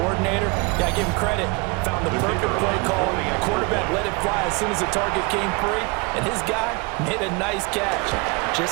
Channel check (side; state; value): left; quieter; 29.2 dB